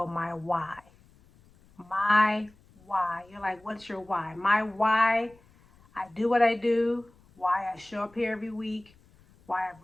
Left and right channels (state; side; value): noise; left; rumble, 29 dB below the sound